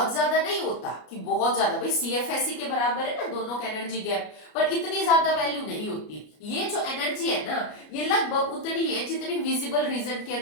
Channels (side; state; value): right; late; 33 ms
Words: ज्यादा नहीं होता कि बहुत ज्यादा, भाई CFSE के बराबर है ना दोनों का एनर्जी गैप, पर इतनी ज्यादा वैल्यू नहीं होती। ये जो एनर्जी है ना, ये लगभग उतनी है जितनी विजिबल रीजन के